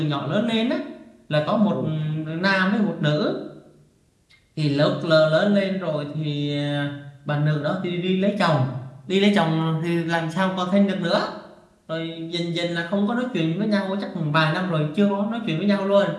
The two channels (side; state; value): both; identical; correlation 1.00